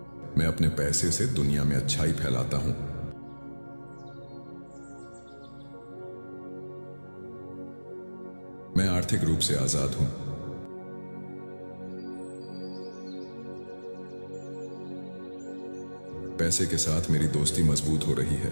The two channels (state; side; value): inverted; both; correlation -1.00